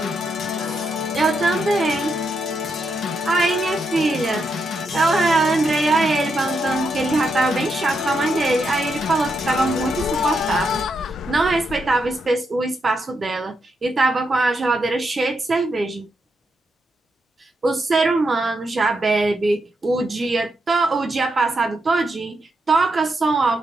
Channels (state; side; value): normal; both; correlation 0.82